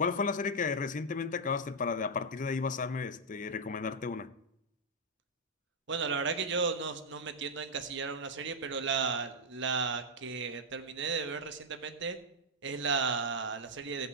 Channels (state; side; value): normal; both; correlation -0.04